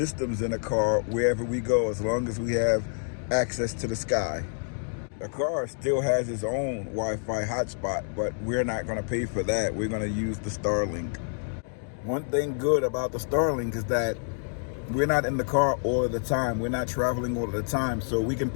in the car wherever we go, as long as we have access to the sky. The car still has its own Wi-Fi hotspot, but we're not going to pay for that. We're going to use the Starlink. One thing good about the Starlink is that we're not in the car all of the time. We're not traveling all of the time, so we can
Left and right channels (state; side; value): silent; right; digital silence